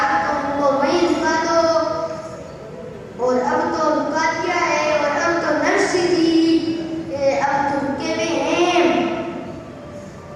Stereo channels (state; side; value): identical; both; correlation 1.00